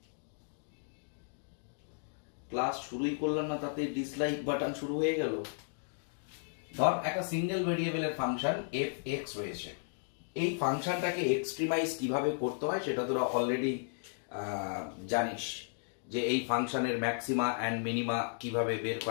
class শুরুই করলাম না তাতে ডিসলাইক বাটন শুরু হয়ে গেল। ধর একটা সিঙ্গেল ভেরিয়েবলের ফাংশন এফ এক্স রয়েছে, এই ফাংশনটাকে এক্সট্রিমাইজ কিভাবে করতে হয় সেটা তোরা অলরেডি জানিস, যে এই ফাংশনের ম্যাক্সিমা অ্যান্ড মিনিমা কিভাবে বের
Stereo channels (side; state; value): right; silent; digital silence